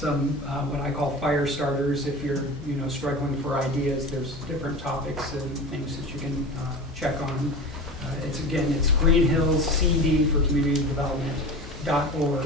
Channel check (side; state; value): both; normal; correlation 0.31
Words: what I call fire starters. If you're struggling for ideas, there's different topics and things that you can check on. It's Greenhills CD for Community